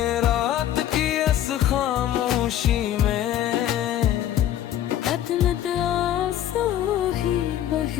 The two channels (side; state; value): right; quieter; 11.6 dB